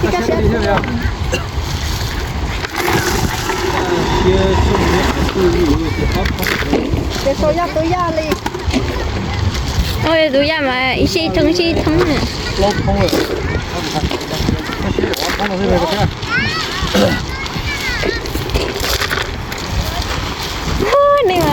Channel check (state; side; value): identical; both; correlation 1.00